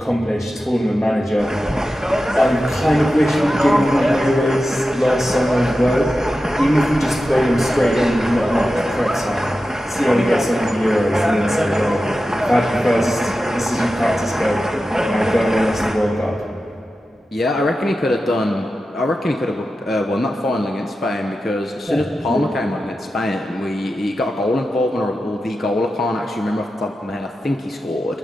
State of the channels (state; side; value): normal; both; correlation 0.92